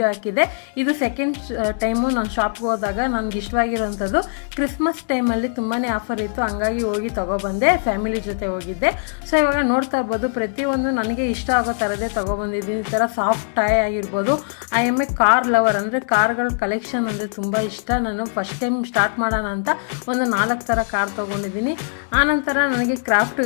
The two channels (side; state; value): right; silent; digital silence